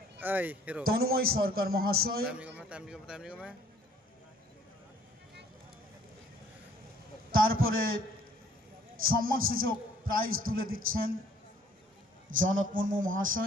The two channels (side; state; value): both; normal; correlation 0.58